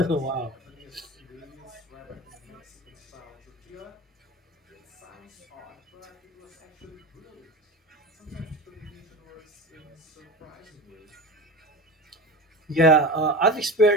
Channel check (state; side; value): normal; both; correlation 0.30